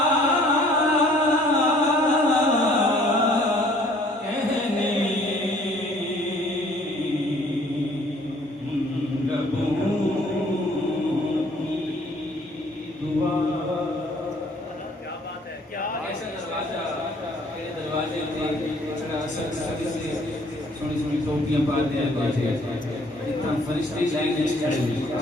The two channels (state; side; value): normal; both; correlation 0.58